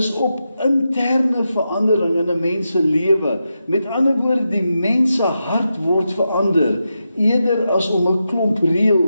op interne verandering in 'n mens se lewe. Met ander woorde, die mens se hart word verander, eerder as om 'n klomp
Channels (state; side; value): inverted; both; correlation -0.88